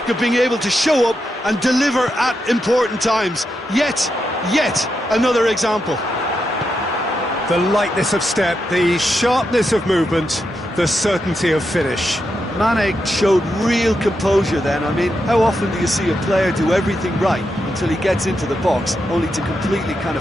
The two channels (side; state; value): both; normal; correlation 0.85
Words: of being able to show up and deliver at important times. Yet another example. The lightness of step, the sharpness of movement, the certainty of finish. Mane showed real composure then. I mean, how often do you see a player do everything right until he gets into the box, only to completely kind